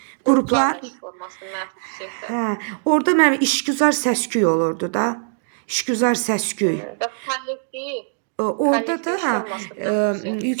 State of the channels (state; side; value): silent; left; digital silence